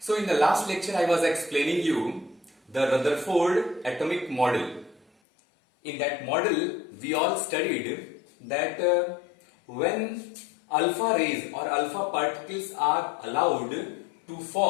So in the last lecture I was explaining you the Rutherford atomic model. In that model we all studied that when alpha rays or alpha particles are allowed to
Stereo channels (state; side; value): drops out; right; at 5.1 s